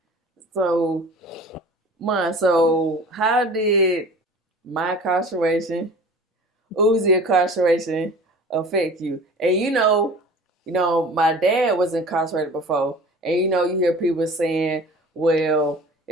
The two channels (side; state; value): both; normal; correlation 0.42